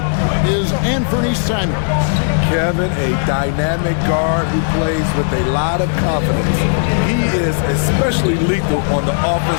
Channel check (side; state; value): right; silent; digital silence